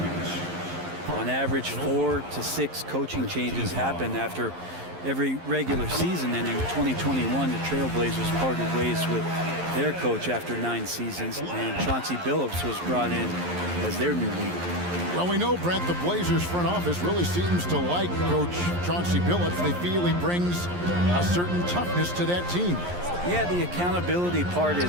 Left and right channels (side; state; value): left; late; 11 ms